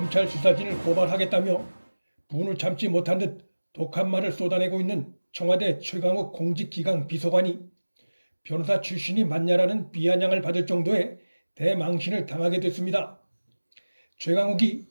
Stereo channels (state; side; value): inverted; both; correlation -1.00